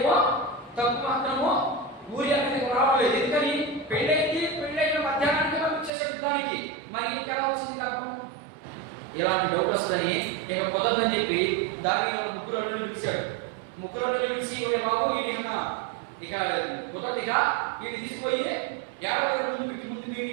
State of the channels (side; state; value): left; drops out; at 5.9 s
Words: తప్పు మాత్రము ఊరి అనేది రావలేదు. ఎందుకని పెళ్ళైన మధ్యాహ్నానికి పంపించేసాడు యుద్ధానికి. మరి ఇంకెలా వచ్చింది లాభం? ఇలాంటి డౌట్ వస్తుందని ఇక కుదరదని చెప్పి దావీదు ముగ్గురు అల్లుళ్ళు పిలిచాడు. ముగ్గురు అల్లుళ్ళు పిలిచి ఒరే బాబు ఇది ఇక కుదరదిగా వీడిని తీసుకుపోయి 50 రోజుల ముందు